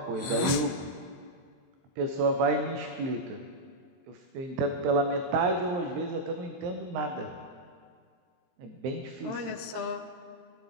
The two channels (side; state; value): left; late; 22 ms